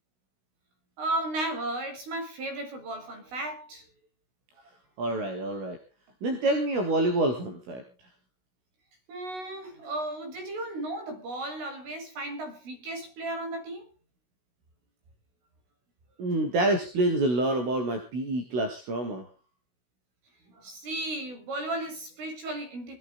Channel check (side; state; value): left; late; 16 ms